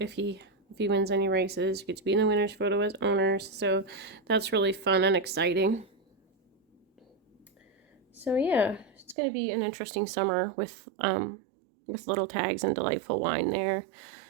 he wins any races, get to be in the winner's photo as owners. So that's really fun and exciting. So yeah, it's going to be an interesting summer with Little Tags and Delightful Wine there.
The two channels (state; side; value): drops out; left; at 9.2 s